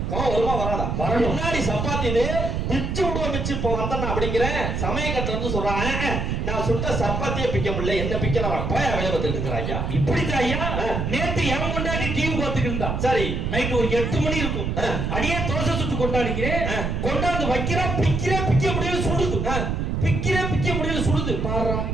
வருமா வராதா? முன்னாடி சப்பாத்தி இது பிச்சு விடுவோம், பிச்சு இப்போ வந்தேன் அப்படிங்கிறேன். சமயக்கட்டுல இருந்து சொல்றான், நான் சுட்ட சப்பாத்தியே பிக்க முடியல, என்ன பிக்கலாம் போய் வேலை பார்த்துட்டு இருக்கிறாங்க. இப்படித்தான் ஐயா. நேத்து என் கொண்டாடி டிவி பார்த்துட்டு இருந்தா. சரி, நைட்டு ஒரு 8 மணி இருக்கும். அடியே தோசை சுட்டு கொண்டாடிக்கிறேன். கொண்டாந்து வைக்கிறா, பிக்க முடியல, சுடுது. பிக்க முடியல, சுடுது. பாரு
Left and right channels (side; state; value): right; noise; rumble, 1 dB below the sound